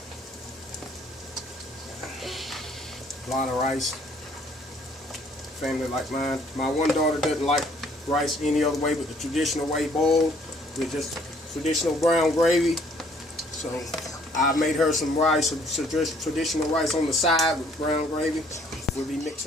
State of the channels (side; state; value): both; normal; correlation 0.61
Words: A lot of rice. Family like mine. My one daughter doesn't like rice any other way but the traditional way, boiled with just traditional brown gravy. So I made her some rice, some traditional rice on the side with brown gravy. We'll be